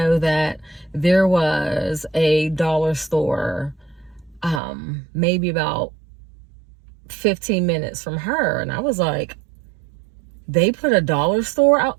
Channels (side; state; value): left; drops out; at 4.6 s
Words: that there was a dollar store, maybe about 15 minutes from her. And I was like, they put a dollar store out?